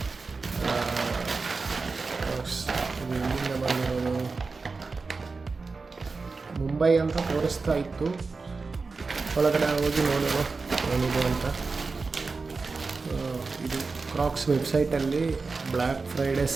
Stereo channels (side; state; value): left; quieter; 4.2 dB